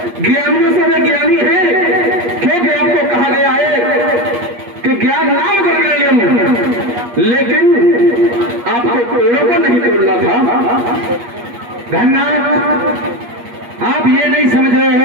ज्ञानियों से वे ज्ञानी है, क्योंकि आपको कहा गया है कि ज्ञान नाम कर गए, लेकिन आपको पेड़ों को नहीं तोड़ना था। धन्यवाद, आप ये नहीं समझ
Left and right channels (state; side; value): late; left; 8.4 ms